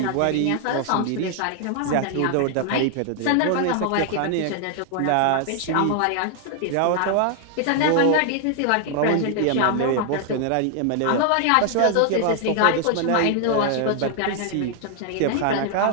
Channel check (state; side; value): different; both; correlation 0.00